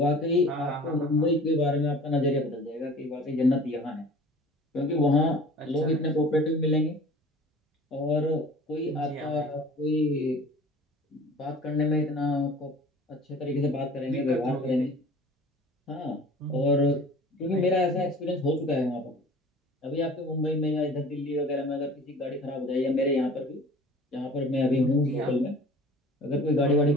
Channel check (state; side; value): normal; both; correlation 0.45